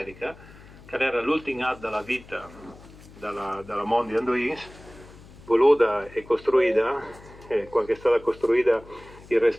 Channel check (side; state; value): left; noise; hum, 21 dB below the sound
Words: che era l'ultimo atto della vita della Mondial Duins, voluta e costruita, quando è stata costruita il